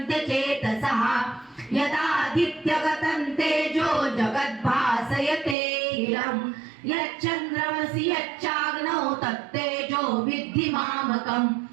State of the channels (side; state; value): left; drops out; at 5.6 s